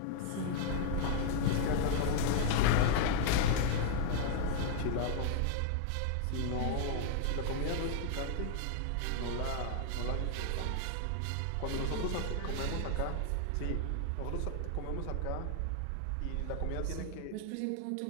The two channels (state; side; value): different; both; correlation 0.00